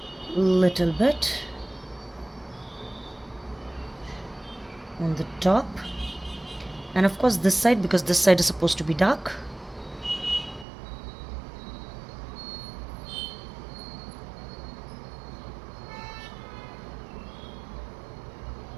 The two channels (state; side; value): drops out; left; at 10.7 s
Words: little bit on the top, and of course this side, because this side is supposed to be dark.